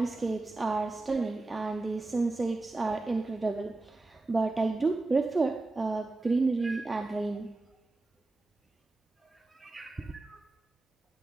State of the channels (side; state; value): left; quieter; 3.1 dB